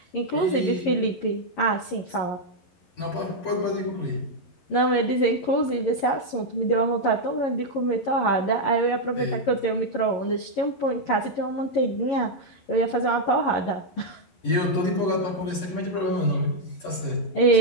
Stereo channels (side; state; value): right; late; 11 ms